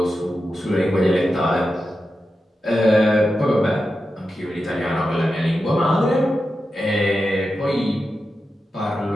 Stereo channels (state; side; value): normal; both; correlation 0.90